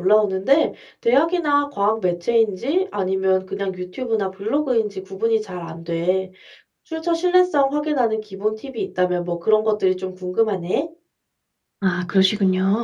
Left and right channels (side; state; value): both; identical; correlation 1.00